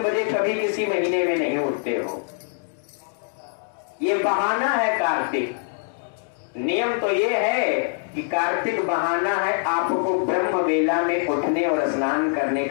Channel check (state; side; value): silent; right; 63 dB below the other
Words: कभी किसी महीने में नहीं उठते हो, ये बहाना है कार्तिक। नियम तो ये है कि कार्तिक बहाना है, आपको ब्रह्म वेला में उठने और स्नान करने